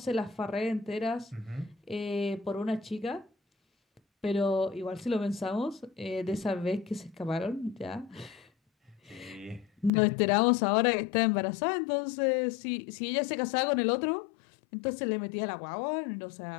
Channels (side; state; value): right; drops out; at 9.9 s